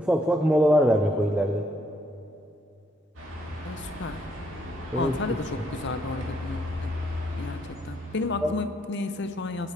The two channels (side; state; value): both; normal; correlation 0.72